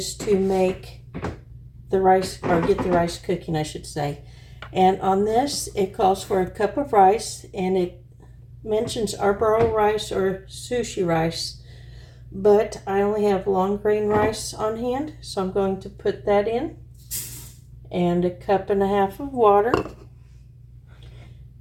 to make the rice, or get the rice cooking, I should say. And on this, it calls for a cup of rice, and it mentions arboro rice or sushi rice, but I only have long grain rice on hand, so I'm going to put that in, and a cup and a half of water.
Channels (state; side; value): identical; both; correlation 1.00